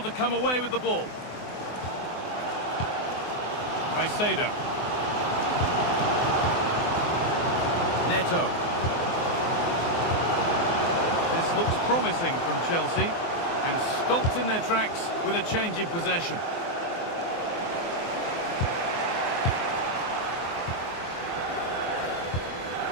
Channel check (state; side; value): late; right; 24 ms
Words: to come away with the ball. Caicedo. Neto. This looks promising from Chelsea. And stopped in their tracks with a change in possession.